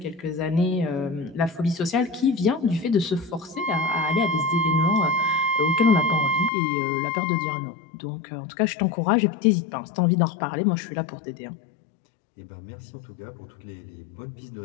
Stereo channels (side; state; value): right; drops out; at 6.5 s